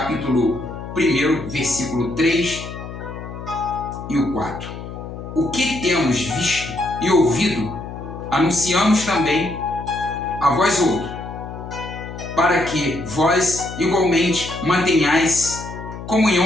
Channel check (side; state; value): left; noise; hum, 11 dB below the sound